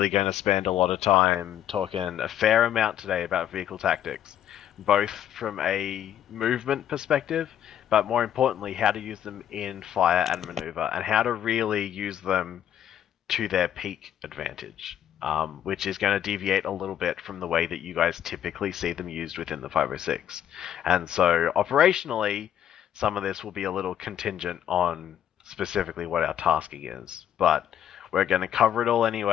going to spend a lot of time talking a fair amount today about vehicle tactics, both from a movement perspective, but more importantly, how to use them in fire and maneuver, and how to really use them to their peak advantage, which is going to deviate a little bit from the way that you guys typically see them used within the 506. And so operationally, some of this will be a little contingent on specifically what our tasking is, but we're going to cover it all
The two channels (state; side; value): quieter; right; 10.5 dB